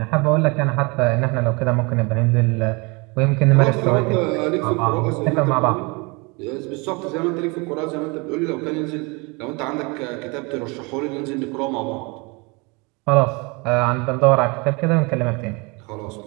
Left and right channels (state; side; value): quieter; left; 28.6 dB